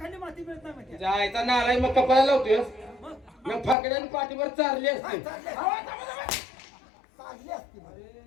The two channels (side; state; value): right; drops out; at 3.8 s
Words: माती मिळत नाही माहिती जायचा नालाय मग कपाळाला लावतोय मग फाकड्याने पाठीवर चारली असते